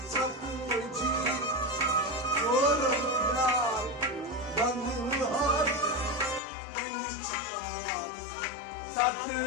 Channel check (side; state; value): right; drops out; at 6.4 s